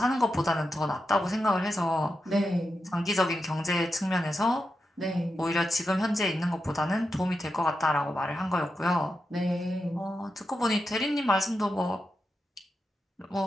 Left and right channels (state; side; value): normal; both; correlation 0.88